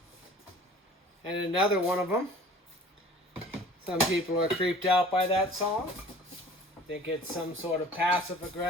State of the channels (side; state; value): both; normal; correlation 0.46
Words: another one of them. Some people are creeped out by that song. Think it's some sort of